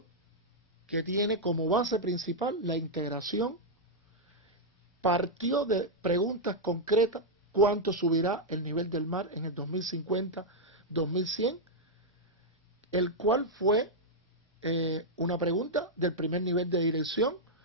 que tiene como base principal la integración. Partió de preguntas concretas: ¿cuánto subirá el nivel del mar en el 2050-2100? El cual fue una pregunta del primer nivel de dirección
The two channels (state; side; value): normal; both; correlation -0.03